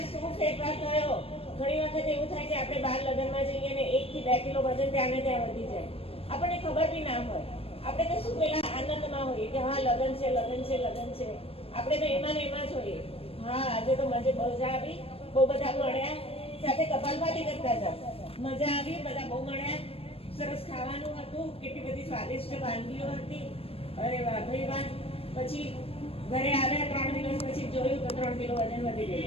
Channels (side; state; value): right; late; 0.28 ms